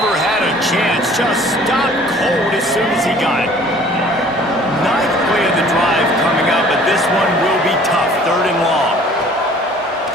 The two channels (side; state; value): both; normal; correlation 0.52